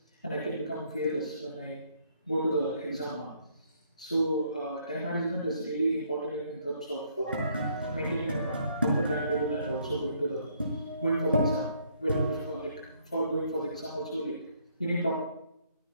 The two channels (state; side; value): inverted; both; correlation -0.67